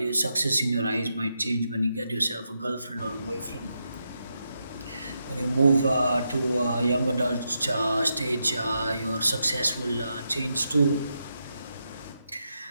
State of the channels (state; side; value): inverted; both; correlation -0.84